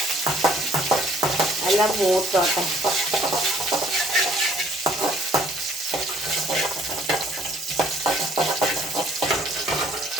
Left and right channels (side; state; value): both; normal; correlation 0.61